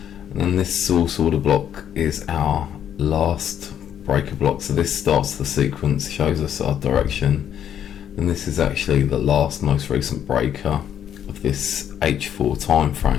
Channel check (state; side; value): quieter; right; 9.6 dB